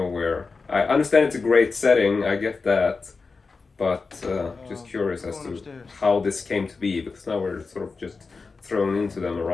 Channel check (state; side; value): quieter; right; 4.4 dB